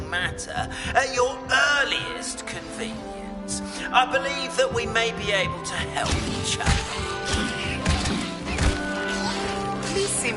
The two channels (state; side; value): identical; both; correlation 1.00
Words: matter at your earliest convenience. I believe that we may be able to help each other. Please see